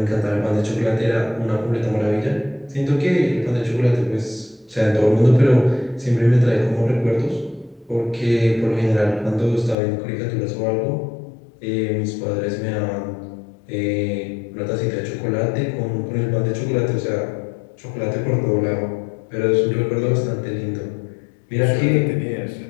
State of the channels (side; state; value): right; drops out; at 9.8 s